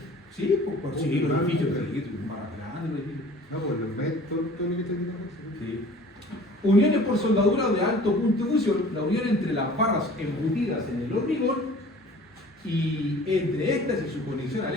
Sí, pues sí, los edificios más grandes. No, pues los ves todo lo que está diciendo. Sí. Uniones por soldadura de alto punto de fusión, la unión entre las barras embutidas en el hormigón y entre estas y su conexión al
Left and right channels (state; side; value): normal; both; correlation 0.47